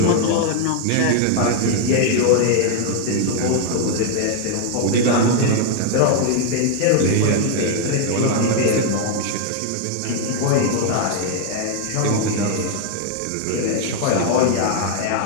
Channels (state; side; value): different; both; correlation 0.00